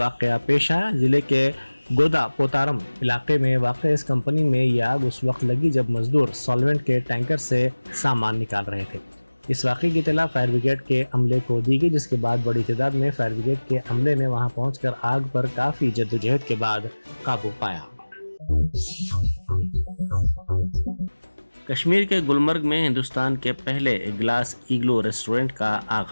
पेश आया। जिले के गोदा पोतारम इलाके में वाक़ इस कंपनी में यह आग उस वक्त लगी जब मजदूर सॉल्वेंट के टैंकर से सामान निकाल रहे थे। इस वाक़े की इत्तला फायर ब्रिगेड के अमले को दी गई, जिसके बाद बड़ी तादाद में फायर ब्रिगेड के अमले ने वहां पहुंचकर आग पर काफ़ी जद्दोजहद के बाद काबू पाया। कश्मीर के गुलमर्ग में हिंदुस्तान के पहले ग्लास इग्लो रेस्टोरेंट का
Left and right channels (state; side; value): inverted; both; correlation -1.00